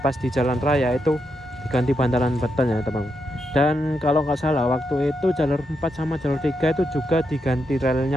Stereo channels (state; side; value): normal; both; correlation 0.83